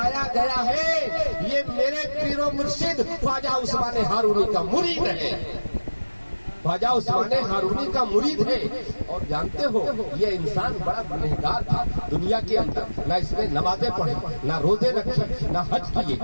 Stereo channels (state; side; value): inverted; both; correlation -1.00